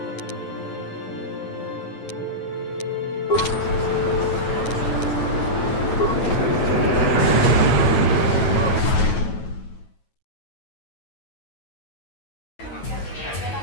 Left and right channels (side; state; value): right; late; 9.2 ms